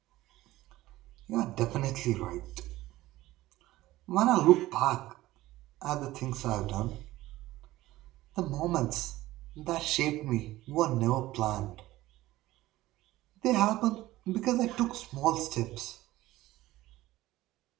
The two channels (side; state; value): left; quieter; 16.8 dB